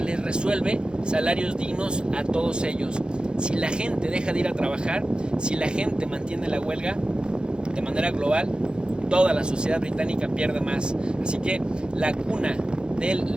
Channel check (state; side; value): late; left; 0.049 ms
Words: les resuelve salarios dignos a todos ellos? Si la gente deja de ir a trabajar, si la gente mantiene la huelga de manera global, toda la sociedad británica pierde más. Así que la cuna del